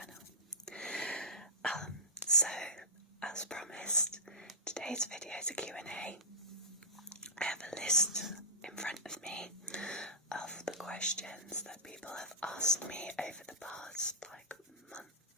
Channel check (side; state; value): both; normal; correlation -0.16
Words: So as promised, today's video is a Q&A. I have a list in front of me of the questions that people have asked me over the past month,